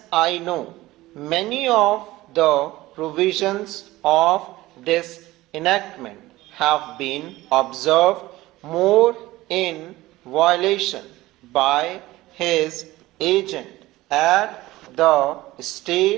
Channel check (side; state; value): left; quieter; 17.9 dB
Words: I know, many of the provisions of this enactment have been observed more in violation by his agent at the